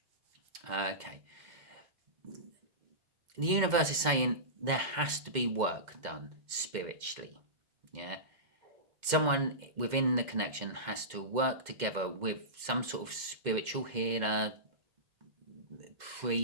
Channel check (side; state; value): left; late; 2.1 ms